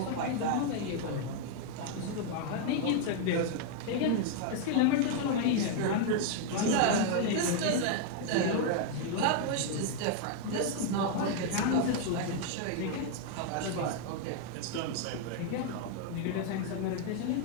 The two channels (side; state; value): both; different; correlation 0.00